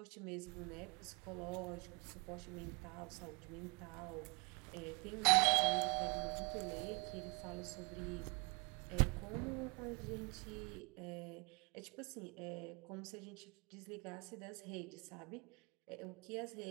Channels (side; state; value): left; quieter; 32.3 dB